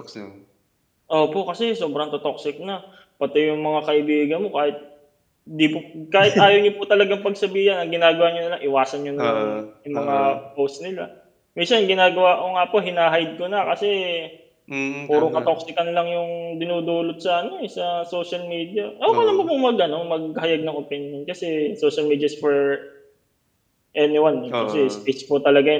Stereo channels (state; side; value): identical; both; correlation 1.00